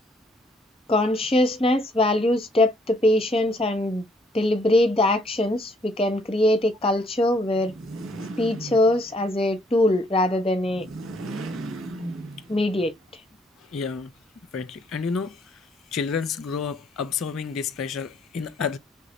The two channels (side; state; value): both; normal; correlation 0.66